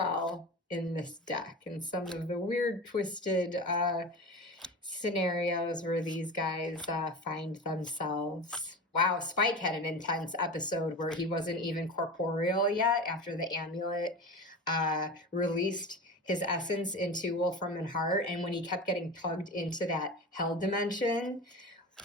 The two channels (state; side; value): normal; both; correlation 0.30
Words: in this deck and some of the weird, twisted scenarios where these guys find themselves. Wow, Spike had an intense episode where he wasn't even corporeal yet after the amulet released his essence into Wolfram and Hart. And when he kept getting tugged into that hell dimension,